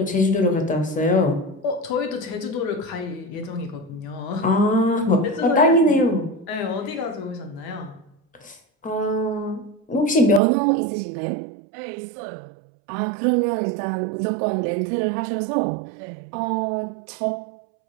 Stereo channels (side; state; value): left; drops out; at 10.4 s